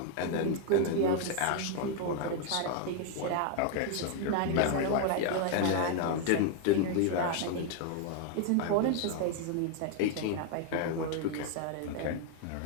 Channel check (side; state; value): both; different; correlation 0.00